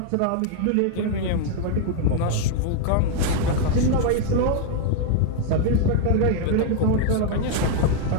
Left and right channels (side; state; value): both; different; correlation 0.00